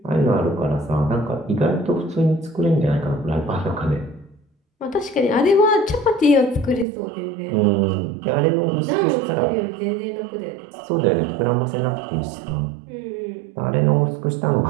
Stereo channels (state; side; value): drops out; left; at 6.9 s